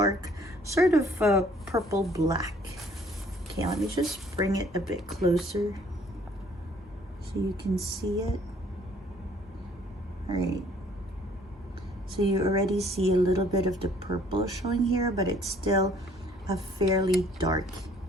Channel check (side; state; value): both; normal; correlation 0.59